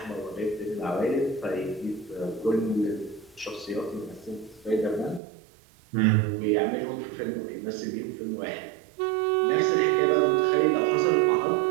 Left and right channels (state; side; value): drops out; left; at 5.2 s